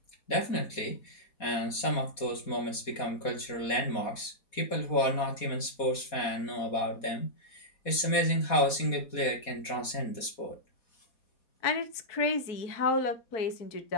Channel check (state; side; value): late; right; 4.2 ms